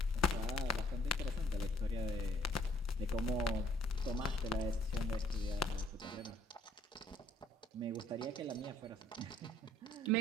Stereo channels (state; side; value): normal; both; correlation 0.63